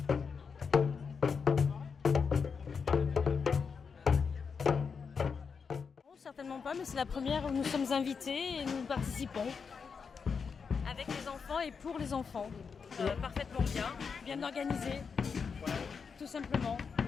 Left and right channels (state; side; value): quieter; right; 5.7 dB